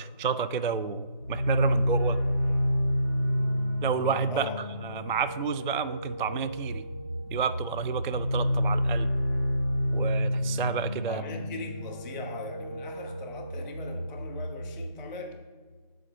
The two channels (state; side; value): inverted; both; correlation -0.66